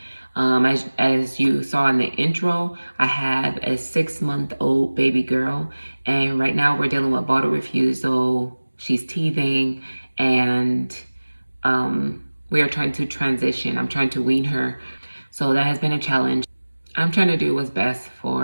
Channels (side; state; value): both; inverted; correlation -1.00